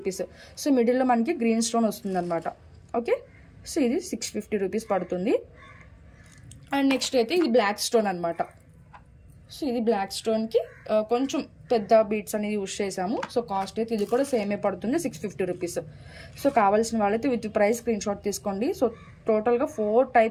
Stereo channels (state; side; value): identical; both; correlation 1.00